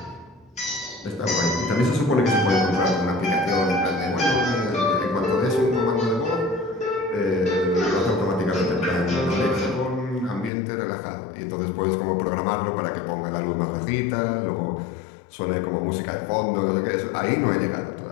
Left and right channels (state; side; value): drops out; right; at 10.5 s